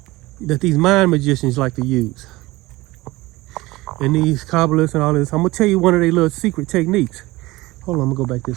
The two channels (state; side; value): quieter; left; 20.0 dB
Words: that these mind magicians like to use. And these Kabbalists and all this. I'm going to tell you one of their little secret techniques. Hold on, I'm going to go back